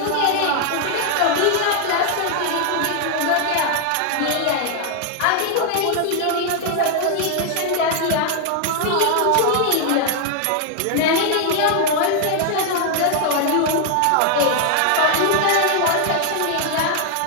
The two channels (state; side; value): different; both; correlation 0.00